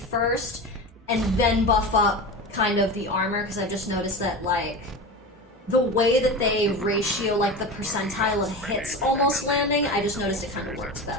and then buff up kind of the armor, because I've just noticed that, like, the way that they ratio, like, the percentile of hits almost landing, I just noticed it kind of works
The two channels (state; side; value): normal; both; correlation 0.26